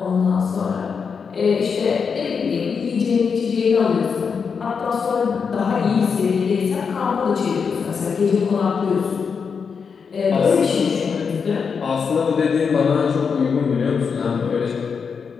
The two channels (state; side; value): quieter; right; 5.9 dB